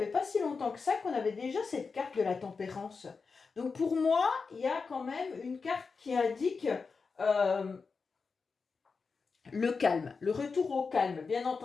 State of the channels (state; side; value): quieter; right; 4.8 dB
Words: pas si longtemps que ça qu'on avait déjà cette carte de la tempérance. Donc pour moi, il y a quand même une carte qui indique le calme, le retour au calme, bien